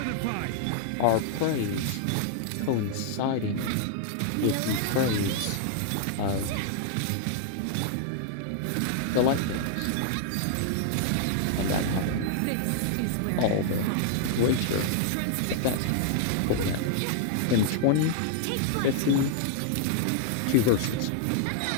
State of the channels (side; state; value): both; different; correlation -0.01